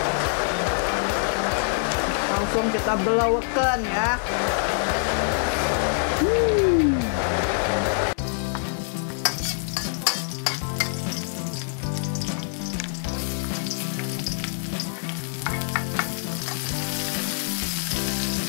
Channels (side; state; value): right; silent; digital silence